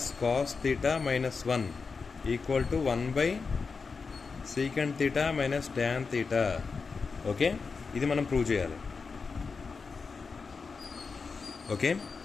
cos theta minus 1 equal to 1 by secant theta minus tan theta. Okay, ఇది మనం prove చేయాలి. Okay,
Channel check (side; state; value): right; quieter; 4.9 dB